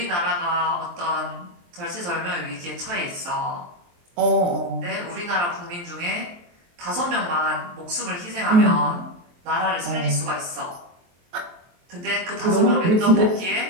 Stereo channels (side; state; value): left; late; 23 ms